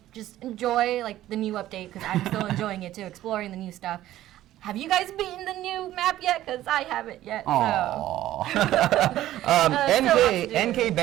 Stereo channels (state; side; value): quieter; left; 13.9 dB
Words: just enjoy like the new update, because I'm still enjoying it too, exploring the new stuff. Have you guys beaten the new map yet? Because I haven't yet. Aww. NK